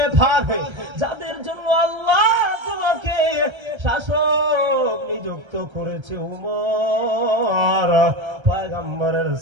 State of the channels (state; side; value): late; left; 1.3 ms